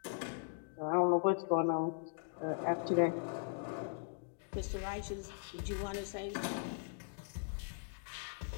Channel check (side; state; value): right; silent; digital silence